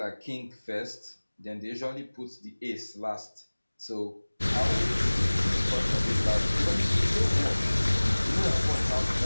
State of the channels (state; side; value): inverted; both; correlation -1.00